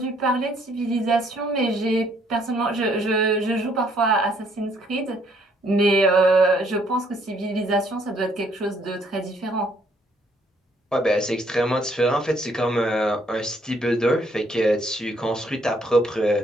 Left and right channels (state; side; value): normal; both; correlation 0.67